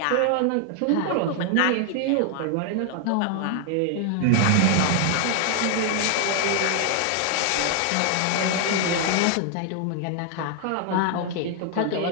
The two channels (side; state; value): both; different; correlation 0.00